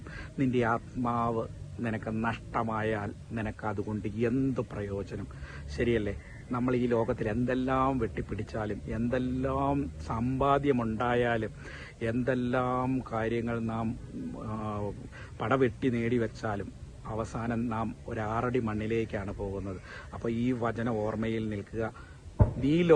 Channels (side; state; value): both; identical; correlation 1.00